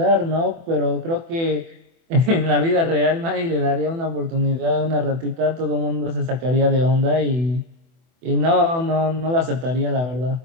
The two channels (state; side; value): late; left; 24 ms